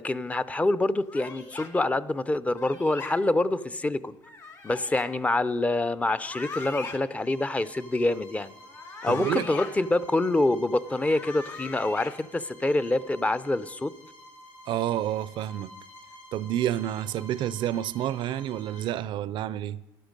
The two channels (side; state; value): both; normal; correlation 0.78